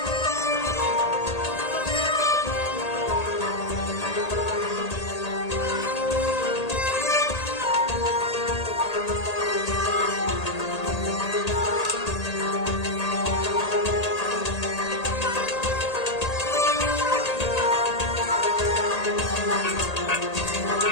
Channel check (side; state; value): right; late; 1.8 ms